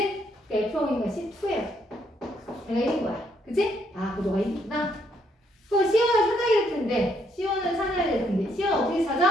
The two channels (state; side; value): normal; both; correlation 0.72